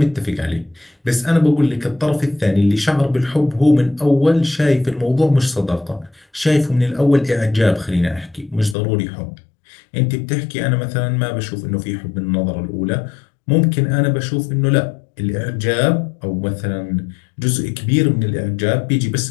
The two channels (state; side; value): drops out; right; at 8.8 s